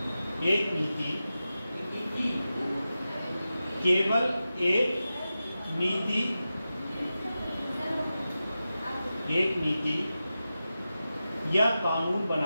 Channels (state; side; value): inverted; both; correlation -0.92